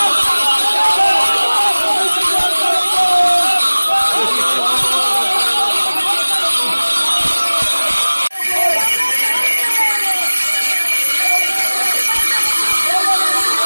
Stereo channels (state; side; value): inverted; both; correlation -1.00